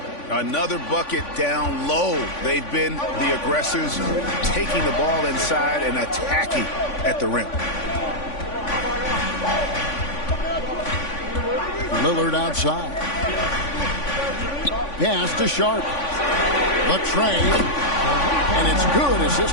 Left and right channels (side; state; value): right; late; 3.5 ms